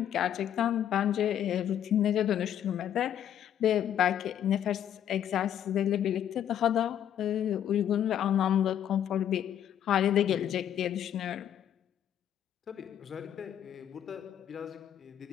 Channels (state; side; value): quieter; right; 10.1 dB